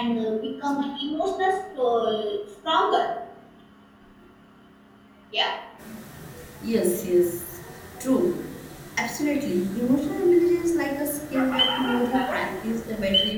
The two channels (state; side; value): identical; both; correlation 1.00